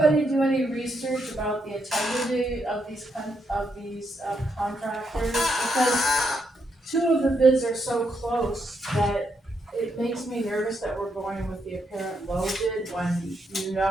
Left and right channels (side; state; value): both; normal; correlation 0.79